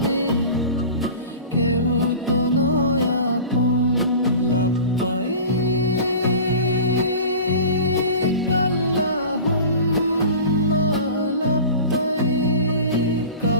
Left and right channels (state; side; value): inverted; both; correlation -0.38